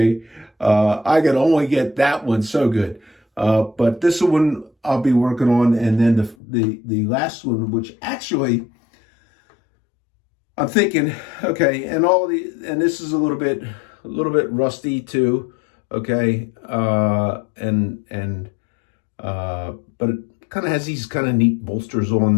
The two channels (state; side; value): drops out; right; at 6.4 s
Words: I could only get that one so good. But this one I'll be working on, and then the last one, which actually I'm thinking, okay, and this is a little bit rusty too. okay, but it kind of has these kind of neat bolsters on